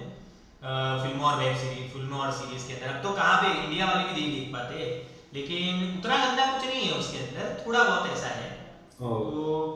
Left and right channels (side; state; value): both; identical; correlation 1.00